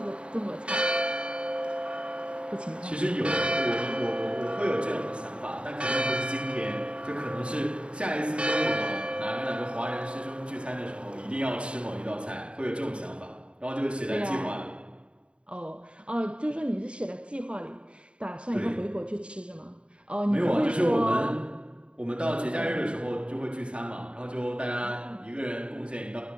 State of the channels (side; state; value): left; late; 0.056 ms